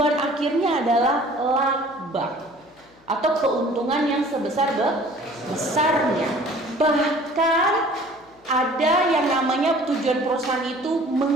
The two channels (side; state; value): left; noise; hum, 29 dB below the sound